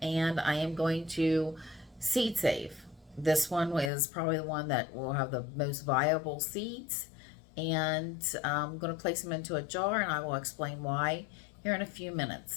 and I am going to seed save. This one is probably the one that will have the most viable seeds, and I'm going to place them into a jar, and I will explain why here in a few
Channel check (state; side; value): drops out; right; at 3.9 s